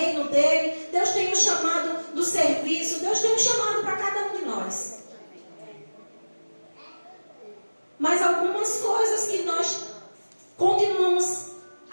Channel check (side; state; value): both; inverted; correlation -1.00